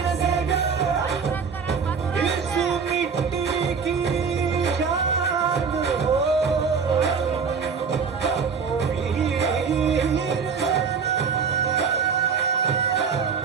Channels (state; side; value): quieter; left; 5.8 dB